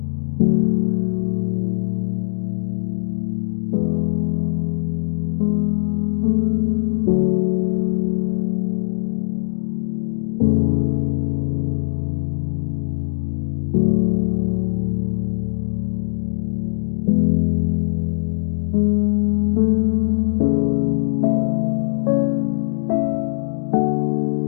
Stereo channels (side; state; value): right; silent; digital silence